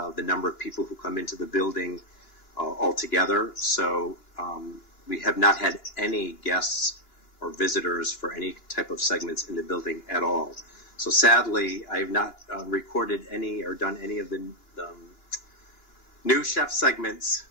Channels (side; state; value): right; late; 2.9 ms